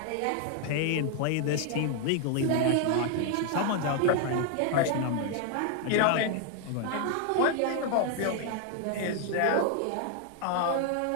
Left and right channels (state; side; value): different; both; correlation 0.01